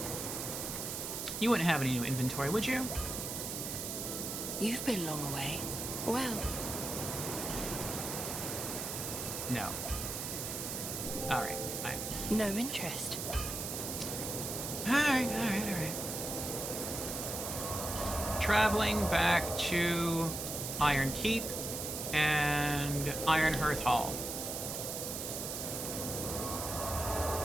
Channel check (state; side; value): noise; right; hiss, 4 dB below the sound